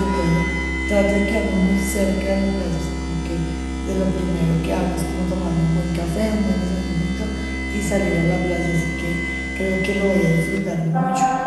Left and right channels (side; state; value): both; identical; correlation 1.00